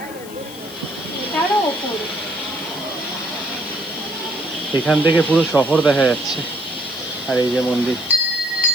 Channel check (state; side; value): noise; left; hiss, 17 dB below the sound